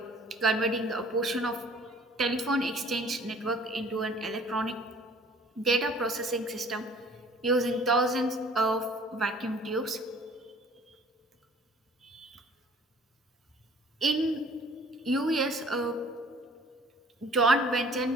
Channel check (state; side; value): normal; both; correlation 0.52